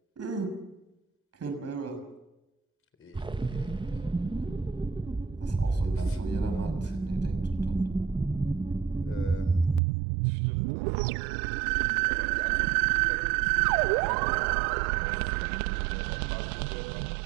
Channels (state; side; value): drops out; left; at 9.8 s